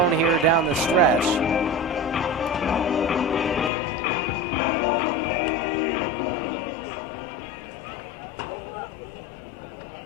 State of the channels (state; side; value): drops out; right; at 3.7 s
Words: here down the stretch. For Stapleton, who walks